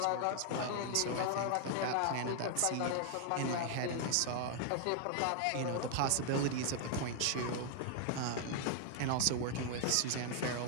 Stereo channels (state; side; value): different; both; correlation 0.00